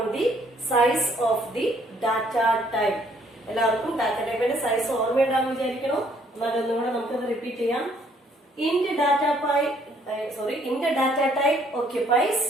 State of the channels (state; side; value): normal; both; correlation 0.65